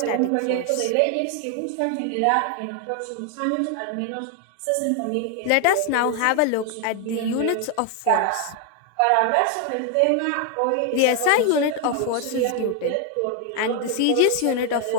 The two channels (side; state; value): both; different; correlation 0.01